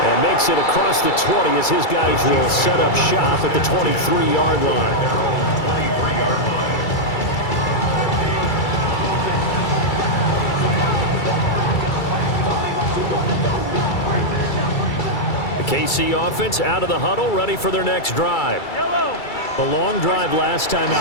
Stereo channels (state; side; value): late; right; 2.3 ms